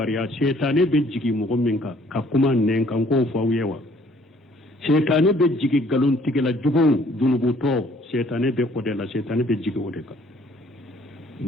shaytane be jigi mɔgɔ min kan ka kuma nɛn kan k'o fɔ aw ye wa shaytane be jigi galon tigɛla jugu junubutɔ shaytane be o de la shaytane be jigi o de kan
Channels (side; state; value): both; normal; correlation 0.60